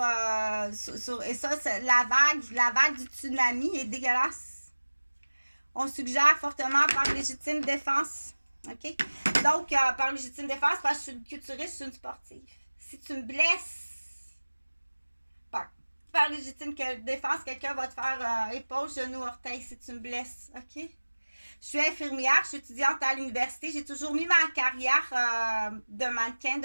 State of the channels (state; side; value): inverted; both; correlation -1.00